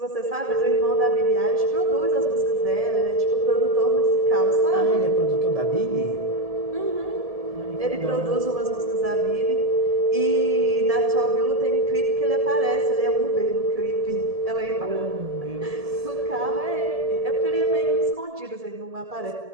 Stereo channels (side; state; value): left; late; 1.7 ms